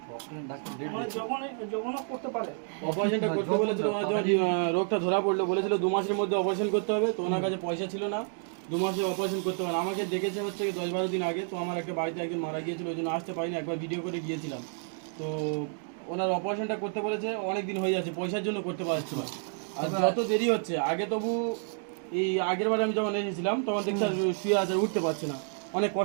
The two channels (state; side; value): silent; left; 58 dB below the other